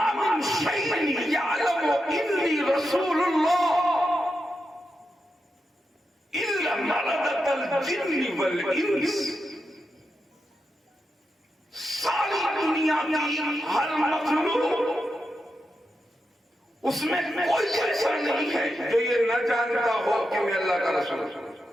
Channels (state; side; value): normal; both; correlation 0.87